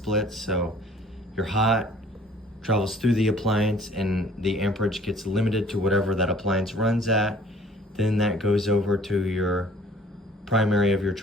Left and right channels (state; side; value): normal; both; correlation 0.53